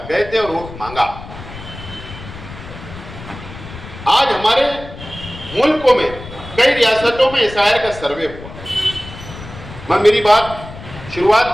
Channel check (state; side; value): noise; left; rumble, 14 dB below the sound